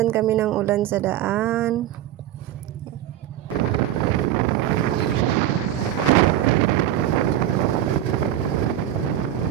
kami ng ulan sa daan.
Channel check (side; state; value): left; quieter; 12.0 dB